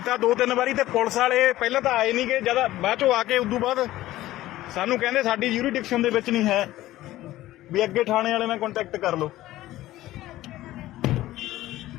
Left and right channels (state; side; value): quieter; right; 15.6 dB